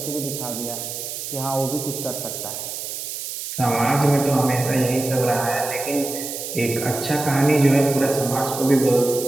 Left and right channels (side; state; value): right; noise; hiss, 7 dB below the sound